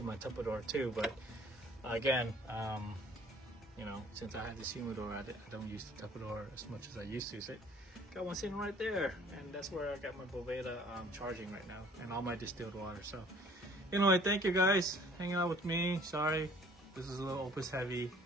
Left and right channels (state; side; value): normal; both; correlation 0.55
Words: my Tupperware too. But again, you know, since I had this humidor, I don't use the Tupperware as much as I used to. So got one sitting right there, and that's where I got my Boveda charging right now, and all my distilled water. So anyway, thank you guys hanging out with me. Sorry, this is a little Opus heavy